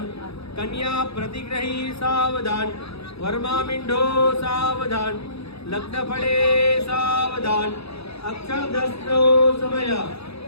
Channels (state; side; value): late; right; 0.78 ms